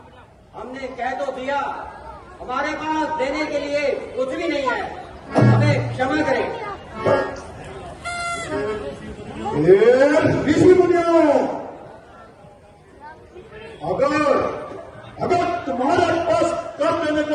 हमने कह तो दिया, हमारे पास देने के लिए कुछ भी नहीं।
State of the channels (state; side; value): identical; both; correlation 1.00